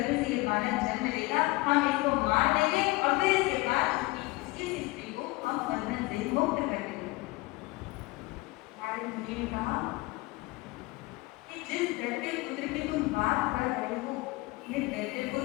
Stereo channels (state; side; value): quieter; right; 21.9 dB